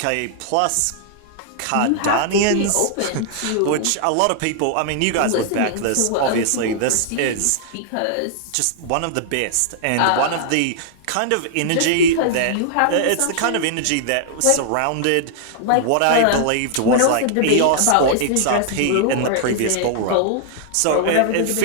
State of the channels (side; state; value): both; different; correlation -0.01